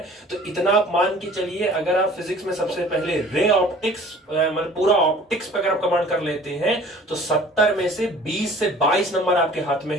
तो इतना आप मान के चलिए, अगर आप फिजिक्स में सबसे पहले रे ऑप्टिक्स मतलब पूरा ऑप्टिक्स पे अगर आप कमांड कर लेते हैं तो 70 में से 20 से 22 नंबर आपके हाथ में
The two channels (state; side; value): normal; both; correlation 0.48